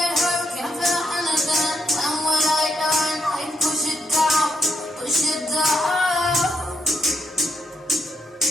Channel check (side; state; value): both; normal; correlation 0.80